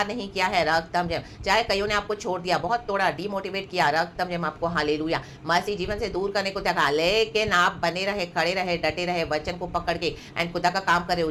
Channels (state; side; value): identical; both; correlation 1.00